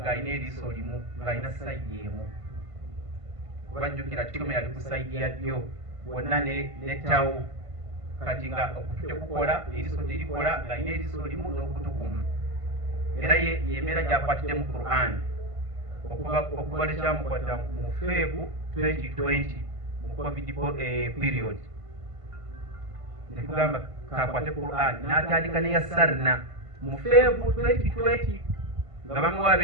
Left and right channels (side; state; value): left; late; 1.5 ms